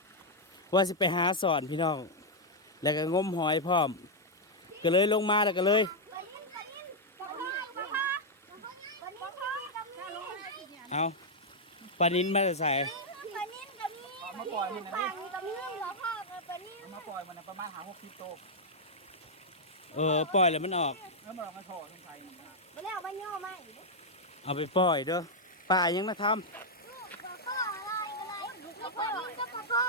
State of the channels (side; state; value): both; normal; correlation -0.03